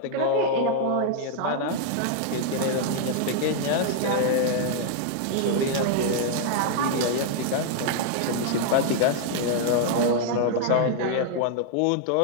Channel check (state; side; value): different; both; correlation 0.00